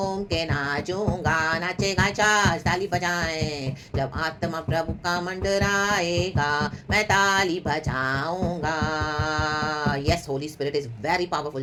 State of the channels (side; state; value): both; identical; correlation 1.00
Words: के नाचूंगा। नाचेगा चाच, ताली बजाएं। जब आत्मा प्रभु का मंडराएगा मैं ताली बजाऊंगा। Yes, Holy Spirit is very